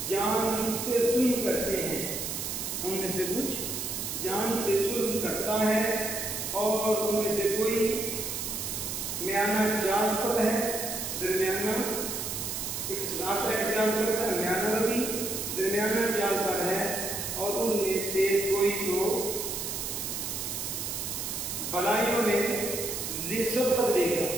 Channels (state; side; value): noise; right; hiss, 4 dB below the sound